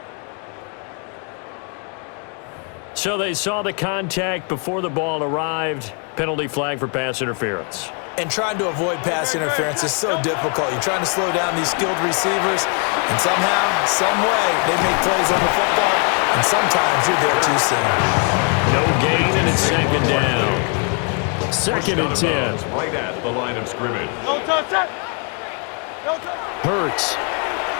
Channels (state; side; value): quieter; right; 39.0 dB